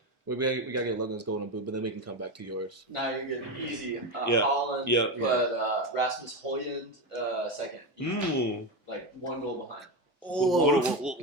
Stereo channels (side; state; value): both; normal; correlation 0.16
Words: We gotta get Logan's golden boot, but then we can come back to yours. No, you're good. Easy. Yeah. Holland, Yeah. but Rasmus Højlund second. Ooh. Like 1 goal behind.